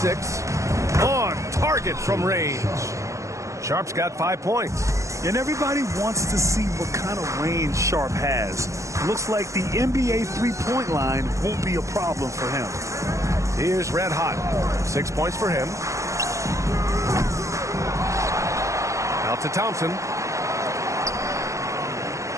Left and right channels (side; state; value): left; late; 0.15 ms